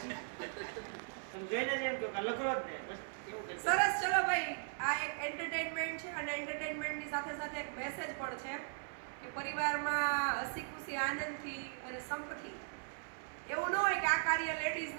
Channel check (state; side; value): silent; left; 52 dB below the other